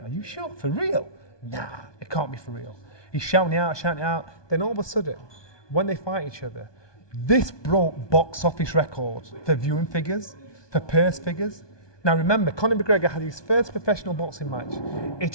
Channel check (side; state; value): right; late; 1.2 ms